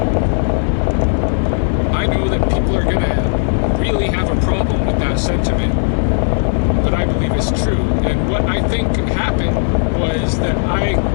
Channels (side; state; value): right; silent; digital silence